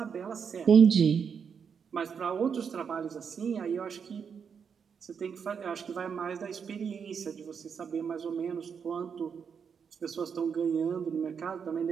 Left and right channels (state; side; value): quieter; left; 6.7 dB